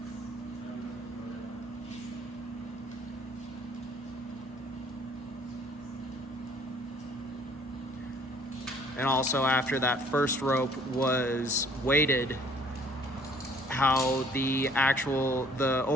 And also after that first rope was weighted, how the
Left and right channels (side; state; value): both; normal; correlation 0.58